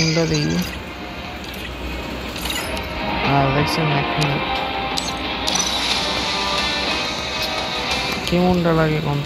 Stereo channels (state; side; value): identical; both; correlation 1.00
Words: দিই। আর দেখছেন 1 মিনিট কেমনটা লাগে